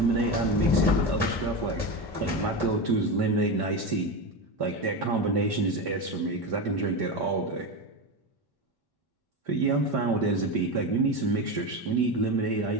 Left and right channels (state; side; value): late; right; 1.1 ms